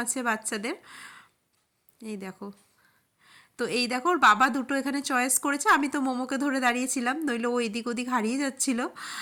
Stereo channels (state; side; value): identical; both; correlation 1.00